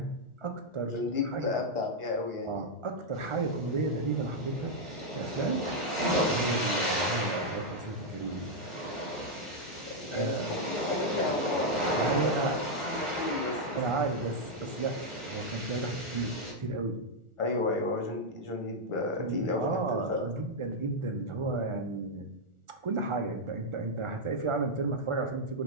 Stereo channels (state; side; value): late; left; 1.4 ms